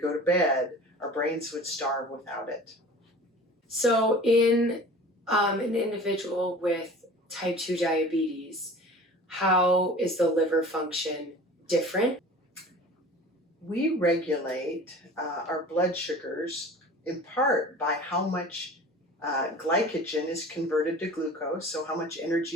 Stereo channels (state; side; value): normal; both; correlation 0.41